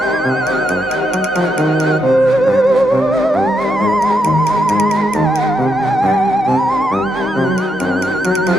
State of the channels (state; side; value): normal; both; correlation 0.81